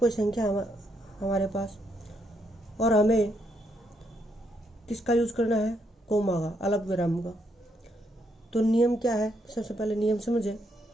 संख्या हमारे पास, और हमें किसका यूज करना है? कोमा का, अल्पविराम का। तो नियम क्या है? सबसे पहले नियम समझे।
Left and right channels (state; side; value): normal; both; correlation 0.76